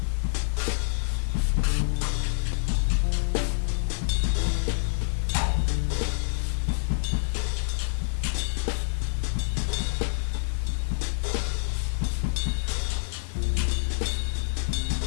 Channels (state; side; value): silent; right; 60 dB below the other